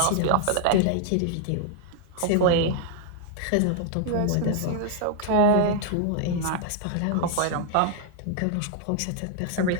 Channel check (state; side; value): different; both; correlation 0.00